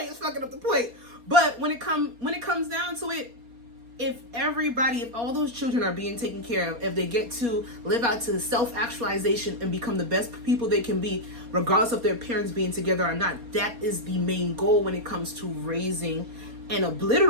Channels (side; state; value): left; late; 4.2 ms